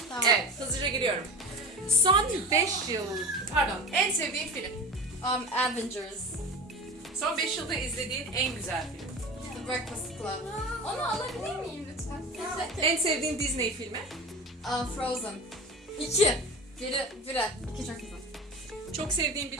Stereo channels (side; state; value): both; normal; correlation 0.32